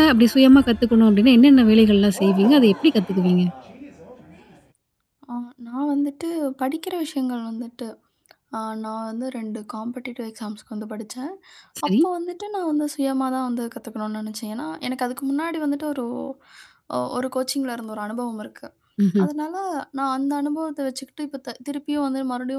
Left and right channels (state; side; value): identical; both; correlation 1.00